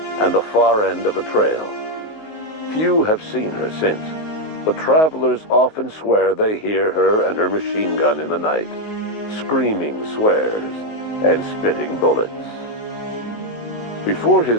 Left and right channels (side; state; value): right; late; 19 ms